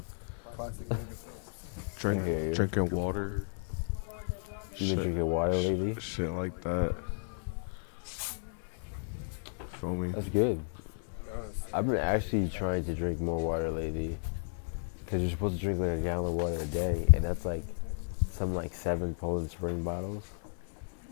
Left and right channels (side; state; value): right; silent; 56 dB below the other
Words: Classic nigga films. I hear you. drinking water. You been drinking water lately? Shit like that. Feel me? That's good. I've been actually trying to drink more water lately. Because you're supposed to drink like a gallon of water a day. And that's like some like 7 Poland Spring bottles.